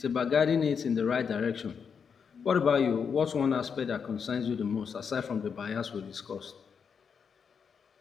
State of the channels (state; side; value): quieter; right; 6.5 dB